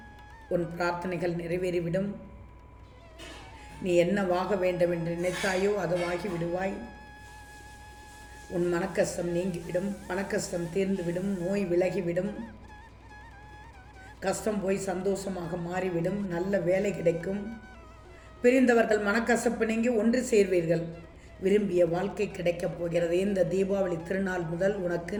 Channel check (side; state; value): both; identical; correlation 1.00